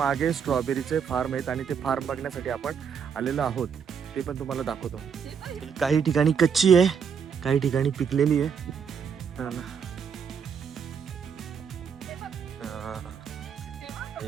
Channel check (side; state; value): left; quieter; 6.9 dB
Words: स्ट्रॉबेरीचे फार्म आहेत आणि ते फार्म बघण्यासाठी आपण आलेलो आहोत. ते पण तुम्हाला दाखवतो. काही ठिकाणी कच्ची आहे, काही ठिकाणी पिकलेली आहे.